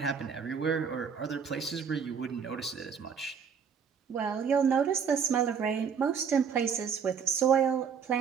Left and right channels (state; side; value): quieter; left; 6.7 dB